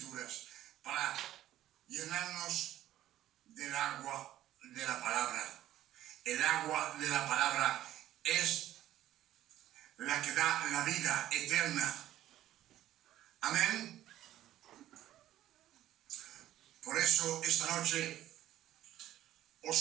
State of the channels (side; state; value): left; quieter; 13.3 dB